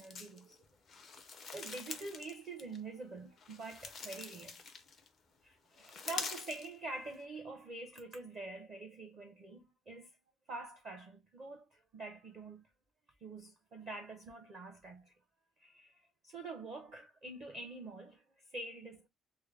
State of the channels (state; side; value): normal; both; correlation 0.58